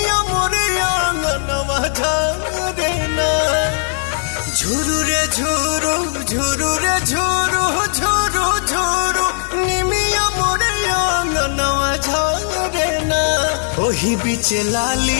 मोरे आंगनवा झारे ना। झुरु रे झुरु झुरु रे झुरु झुरु झुरु निमिया मोरे आंगनवा झारे ना। ओही बीचे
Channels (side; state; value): right; silent; 68 dB below the other